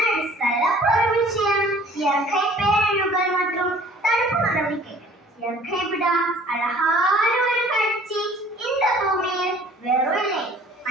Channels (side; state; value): both; normal; correlation 0.52